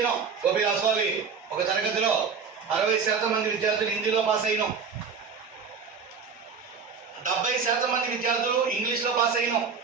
గోపి రాసుకోవాలి. ఒక తరగతిలో 60% మంది విద్యార్థులు హిందీలో పాస్ అయినాం. 70% మంది విద్యార్థులు ఇంగ్లీష్లో పాస్ అయినాం.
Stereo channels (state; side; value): quieter; left; 5.7 dB